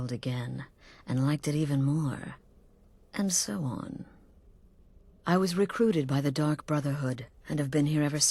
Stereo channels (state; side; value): identical; both; correlation 1.00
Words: again, and liked it even more, and so on. I was recruited by the Dark Brotherhood, and have been here ever